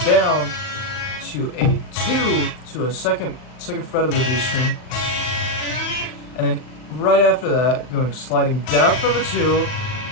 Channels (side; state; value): right; late; 39 ms